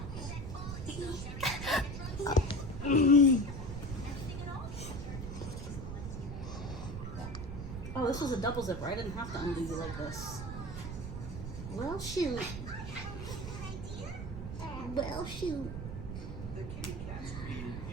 Oh, this was a double zipper. I didn't have to undo you like this. Well, shoot. Well, shoot.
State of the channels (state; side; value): noise; right; rumble, 7 dB below the sound